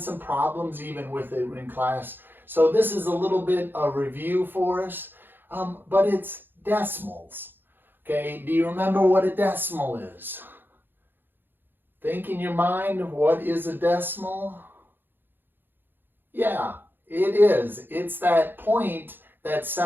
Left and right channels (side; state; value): left; late; 0.097 ms